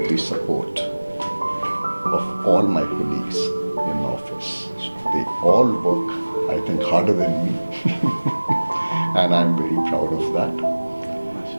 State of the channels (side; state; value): both; inverted; correlation -1.00